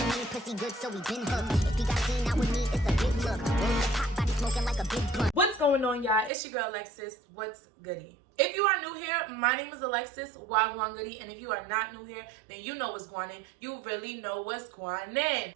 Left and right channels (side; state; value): left; drops out; at 6.3 s